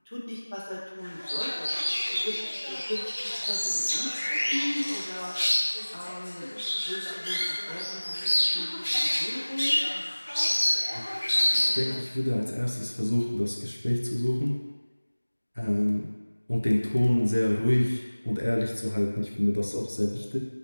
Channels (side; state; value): both; inverted; correlation -1.00